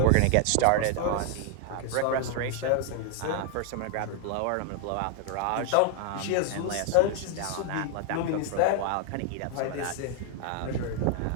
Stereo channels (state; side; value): different; both; correlation 0.00